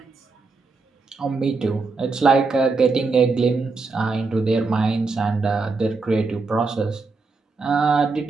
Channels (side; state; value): left; quieter; 4.1 dB